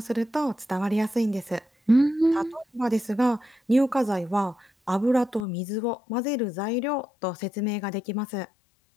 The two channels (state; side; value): drops out; right; at 5.5 s